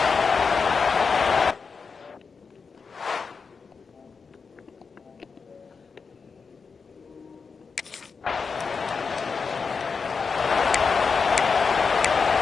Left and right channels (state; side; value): quieter; right; 5.2 dB